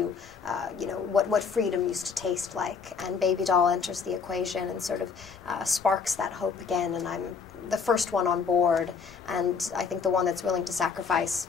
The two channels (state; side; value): quieter; right; 5.7 dB